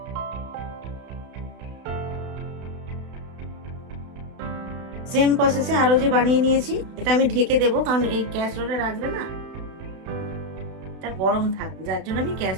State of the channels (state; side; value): late; left; 32 ms